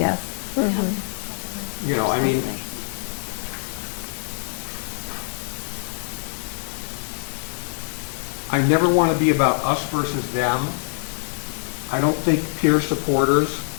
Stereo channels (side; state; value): right; silent; digital silence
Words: You know, I mean, I never want to be about us versus them. I don't think peer supporters